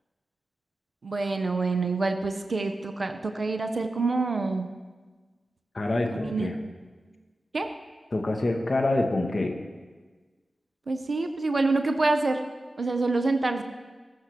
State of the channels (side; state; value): both; normal; correlation 0.92